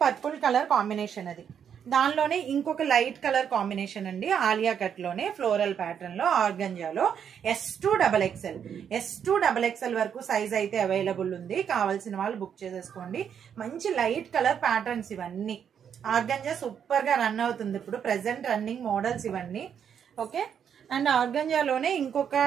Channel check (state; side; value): quieter; left; 8.1 dB